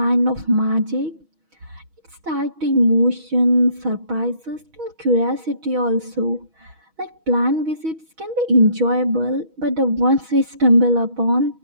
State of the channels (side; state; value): left; late; 6.2 ms